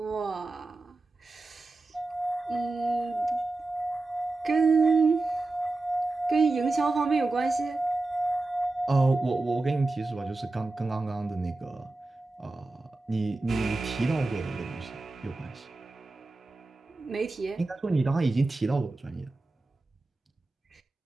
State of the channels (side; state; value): left; quieter; 3.2 dB